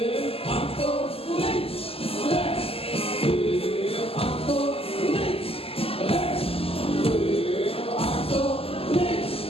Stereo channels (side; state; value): right; late; 0.28 ms